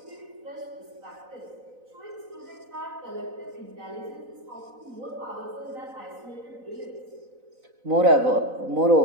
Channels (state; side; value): late; left; 4.0 ms